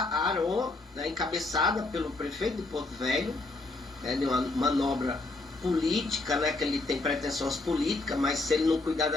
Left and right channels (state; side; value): quieter; right; 3.1 dB